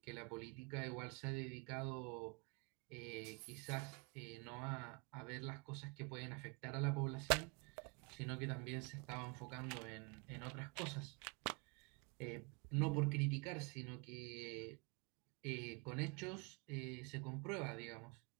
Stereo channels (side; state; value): left; quieter; 30.7 dB